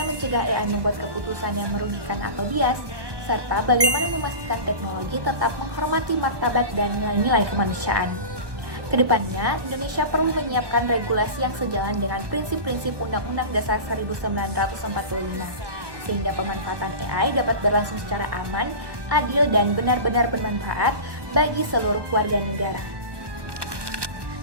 mencegah AI membuat keputusan yang merugikan atau bias, serta bagaimana memastikan teknologi tetap menghormati martabat dan nilai-nilai kemanusiaan. Kedepannya, Indonesia perlu menyiapkan regulasi yang sejalan dengan prinsip-prinsip Undang-Undang Dasar 1945, sehingga pemanfaatan AI dapat berlangsung secara aman, adil, dan benar-benar bermanfaat bagi seluruh warga negara.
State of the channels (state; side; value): late; left; 1.2 ms